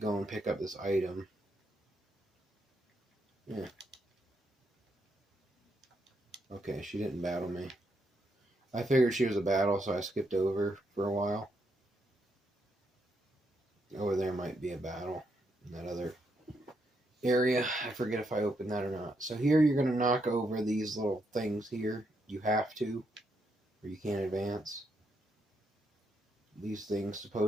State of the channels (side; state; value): both; normal; correlation 0.79